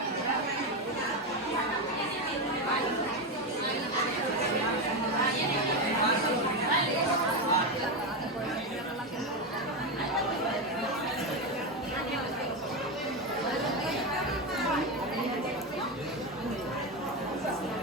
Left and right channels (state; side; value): normal; both; correlation 0.12